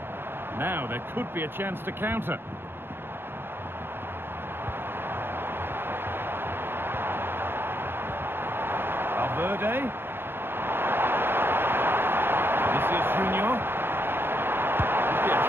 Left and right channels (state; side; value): late; left; 0.10 ms